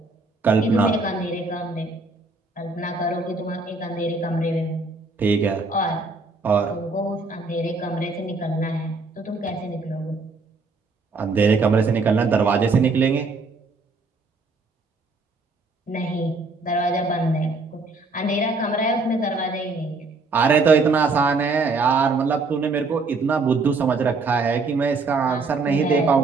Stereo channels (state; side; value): quieter; left; 3.7 dB